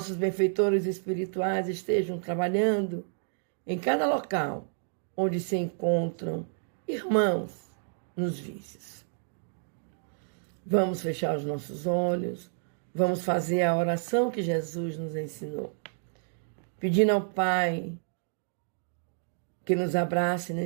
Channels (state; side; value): silent; left; digital silence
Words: benfeitores espirituais estejam trabalhando em cada local onde se encontram irmãos nos vícios. Vamos fechar os nossos olhos, vamos fazer a oração que Jesus nos ensinou, pedindo ao Pai que nos abrace